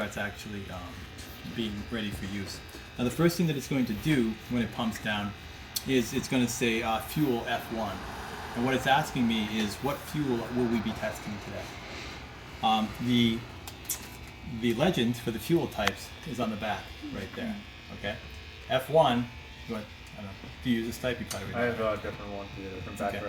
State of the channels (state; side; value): identical; both; correlation 1.00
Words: actually being ready for use. Now the first thing that it's going to do when it pumps down is it's going to say fuel F1. And what it's asking me is what fuel will we be testing today? The legend for the fuel types is on the back right there. Okay, F1. Do you use this type? You probably I have a different one here from back Okay.